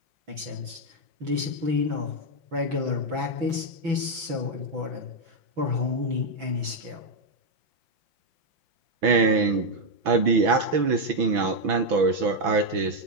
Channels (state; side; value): late; left; 6.0 ms